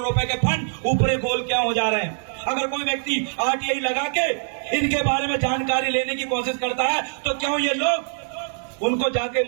के फंड ऊपरी गोल क्या हो जा रहे हैं? अगर कोई व्यक्ति आरटीआई लगा के इनके बारे में जानकारी लेने की कोशिश करता है तो क्यों ये लोग उनको जाके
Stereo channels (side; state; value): left; silent; digital silence